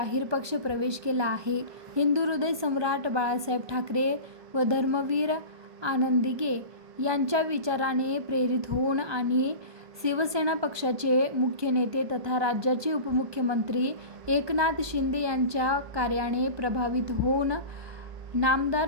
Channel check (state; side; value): late; left; 1.2 ms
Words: पक्ष प्रवेश केला आहे। हिंदू हृदय सम्राट बाळासाहेब ठाकरे व धर्मवीर आनंदीगे यांच्या विचाराने प्रेरित होऊन आणि शिवसेना पक्षाचे मुख्य नेते तथा राज्याचे उपमुख्यमंत्री एकनाथ शिंदे यांच्या कार्याने प्रभावित होऊन